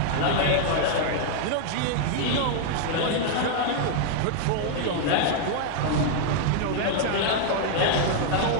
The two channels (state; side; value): different; both; correlation 0.00